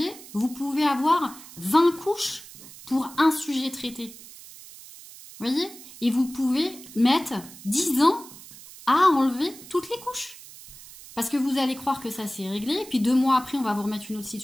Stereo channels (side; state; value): right; noise; hiss, 17 dB below the sound